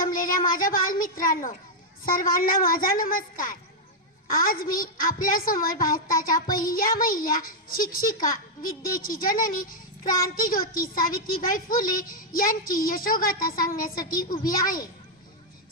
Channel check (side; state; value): both; normal; correlation -0.03